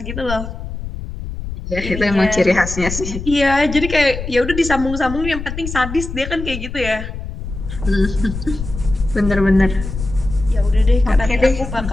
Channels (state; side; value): noise; left; rumble, 8 dB below the sound